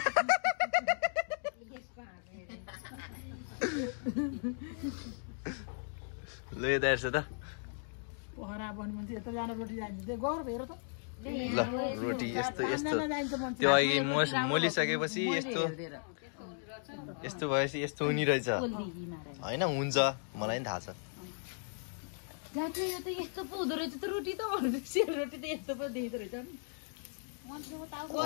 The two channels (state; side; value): silent; right; 54 dB below the other